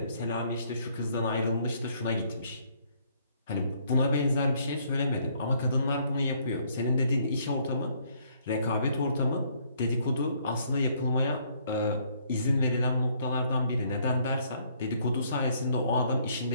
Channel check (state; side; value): inverted; both; correlation -0.66